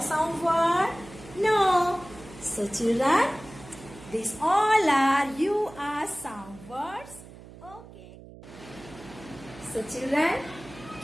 sound word? No. So children, these all are your sound words. Okay. So children,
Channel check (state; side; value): noise; right; hum, 18 dB below the sound